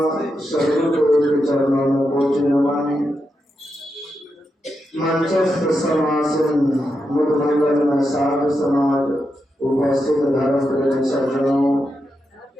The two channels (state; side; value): normal; both; correlation 0.86